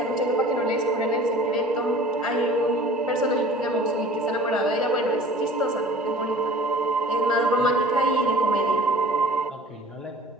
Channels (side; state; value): both; normal; correlation 0.45